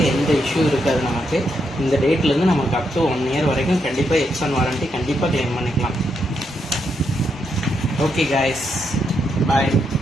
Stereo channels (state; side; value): normal; both; correlation 0.80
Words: எந்த இஷ்யூ இருக்காது. நமக்கு இந்த டேட்லேருந்து நமக்கு அப் டு 1 இயர் வரைக்கும் கண்டிப்பாக எக்ஸ்டன் வாரண்டி கண்டிப்பாக கிளைம் பண்ணிக்கலாம். ஓகே காய்ஸ், பாய்.